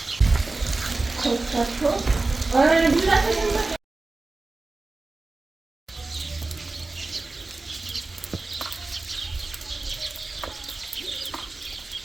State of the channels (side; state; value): left; quieter; 3.4 dB